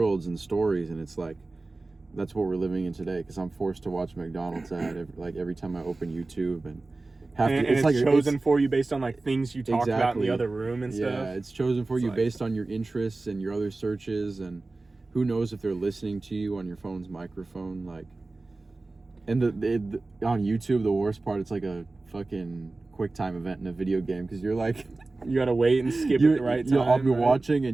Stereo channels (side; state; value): left; quieter; 3.3 dB